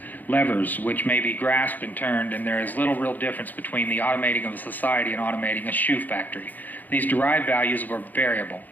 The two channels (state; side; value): late; right; 0.084 ms